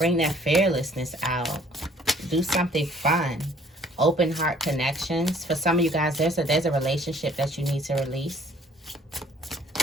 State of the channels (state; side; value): normal; both; correlation 0.58